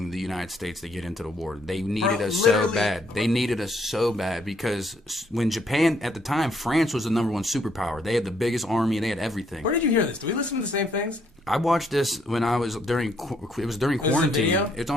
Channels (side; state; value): both; normal; correlation 0.70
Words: the United States to get into the war. They needed us so bad. They needed us so bad because when Japan at the time, France was the number one superpower. They had the biggest army. They had everything. Where did you hear this? Do we listen to the same things? I watched this when I was during quarantine. video? It's